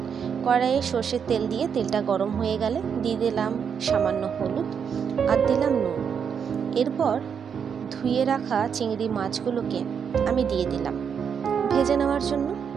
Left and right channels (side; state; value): left; quieter; 7.1 dB